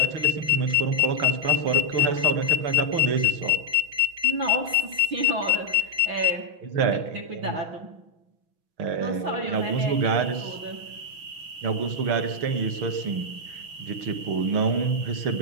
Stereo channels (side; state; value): left; late; 6.1 ms